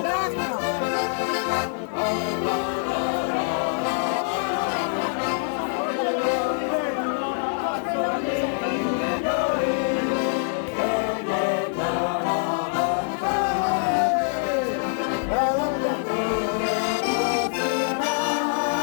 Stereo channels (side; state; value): right; silent; 62 dB below the other